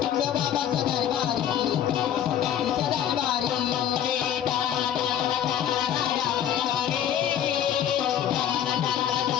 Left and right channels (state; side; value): quieter; right; 10.0 dB